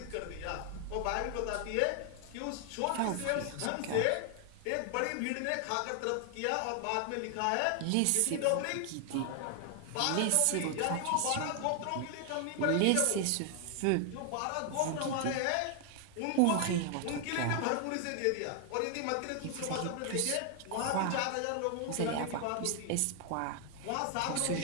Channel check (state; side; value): different; both; correlation 0.00